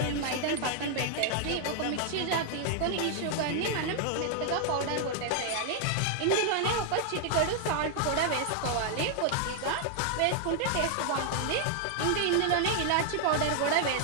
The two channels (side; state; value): both; different; correlation 0.00